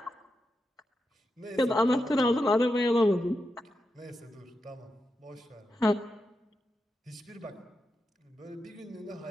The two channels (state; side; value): normal; both; correlation 0.88